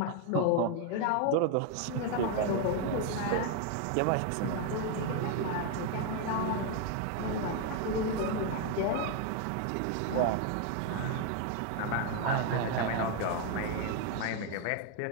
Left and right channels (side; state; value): both; different; correlation 0.01